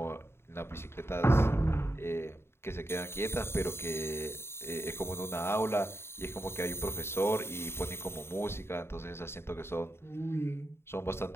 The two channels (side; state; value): right; late; 0.12 ms